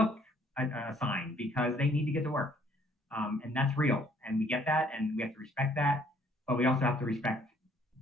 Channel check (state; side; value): normal; both; correlation 0.62